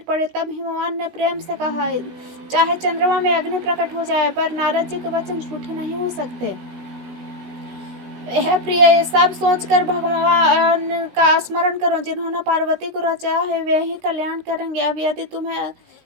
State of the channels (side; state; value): left; late; 16 ms